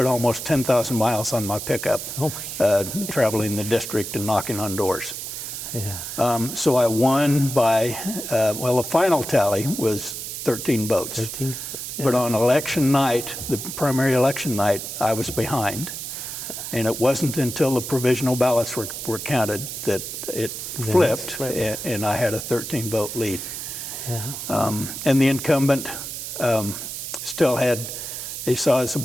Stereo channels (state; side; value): noise; right; hiss, 7 dB below the sound